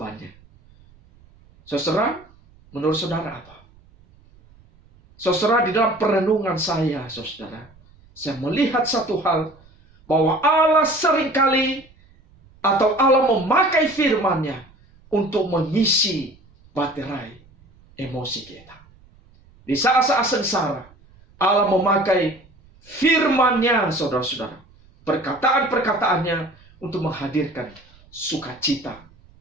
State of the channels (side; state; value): right; noise; rumble, 28 dB below the sound